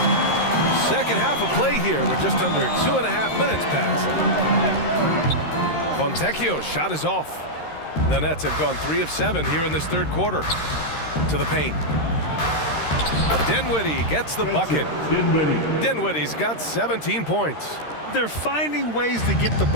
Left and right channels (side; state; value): right; late; 13 ms